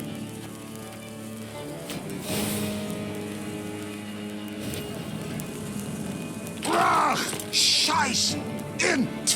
Brach! Scheiß! In!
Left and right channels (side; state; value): both; identical; correlation 1.00